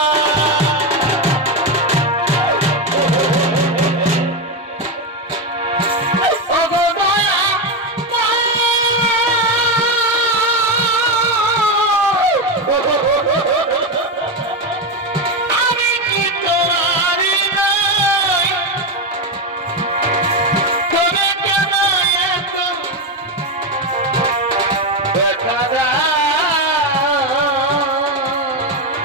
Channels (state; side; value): normal; both; correlation 0.11